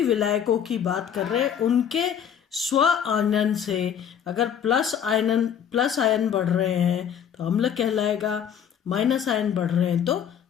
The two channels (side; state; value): right; quieter; 8.5 dB